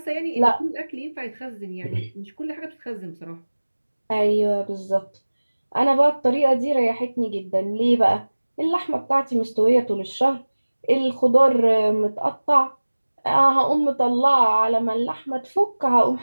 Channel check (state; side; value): inverted; both; correlation -1.00